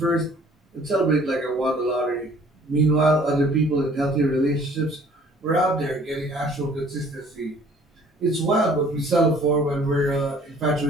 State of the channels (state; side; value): normal; both; correlation 0.55